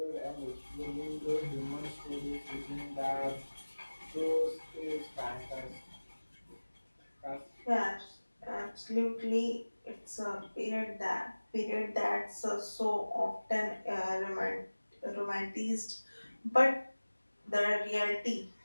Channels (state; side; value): inverted; both; correlation -1.00